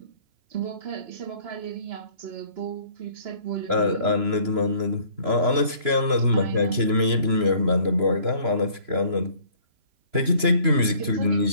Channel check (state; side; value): late; left; 3.0 ms